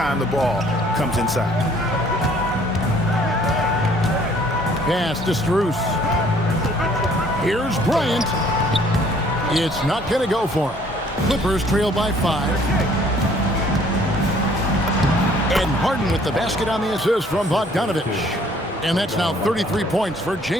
the ball comes inside. Pass to Strus. Here's Bryant. It's not going to go for him. Clippers trail by 5. And Harden with the basket on the assist from Bogdanovich. And that's now 33 points for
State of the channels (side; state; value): both; normal; correlation 0.59